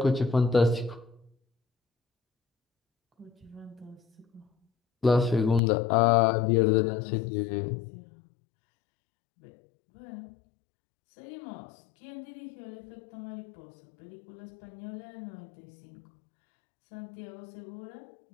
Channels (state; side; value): drops out; right; at 5.6 s